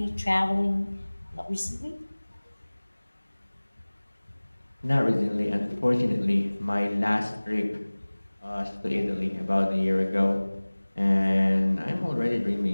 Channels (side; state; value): both; inverted; correlation -1.00